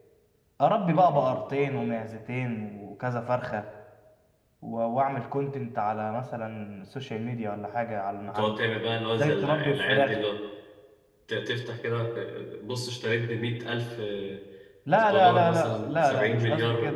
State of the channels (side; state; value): both; identical; correlation 1.00